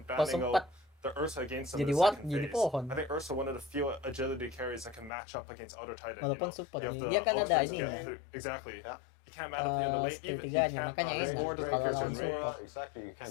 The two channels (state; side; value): drops out; right; at 5.1 s